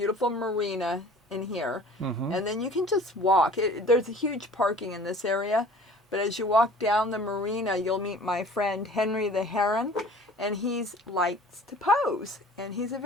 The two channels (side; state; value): both; normal; correlation 0.47